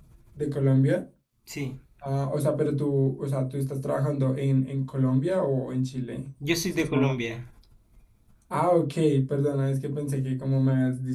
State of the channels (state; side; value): identical; both; correlation 1.00